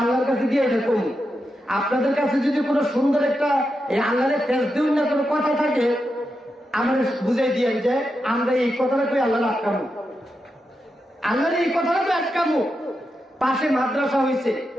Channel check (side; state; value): both; normal; correlation 0.87